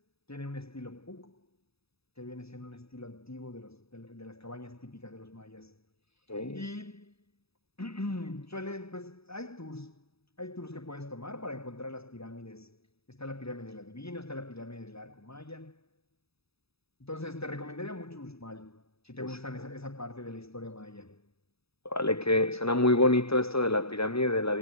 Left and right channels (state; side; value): late; right; 0.78 ms